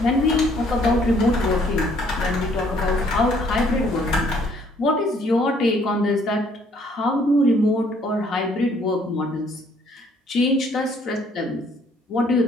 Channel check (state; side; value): normal; both; correlation 0.63